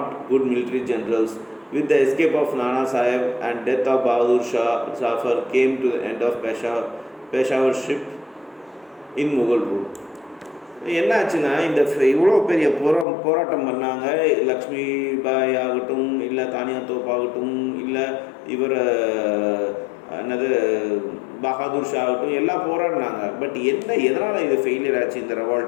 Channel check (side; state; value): right; drops out; at 13.1 s